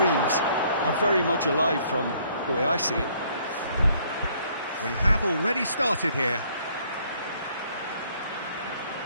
are very much alive from the way I see it. We have already started here.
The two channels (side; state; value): both; inverted; correlation -0.63